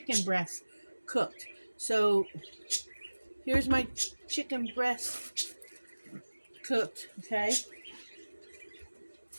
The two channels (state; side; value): inverted; both; correlation -1.00